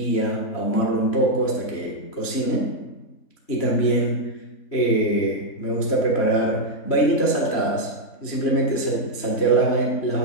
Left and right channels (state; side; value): late; right; 3.1 ms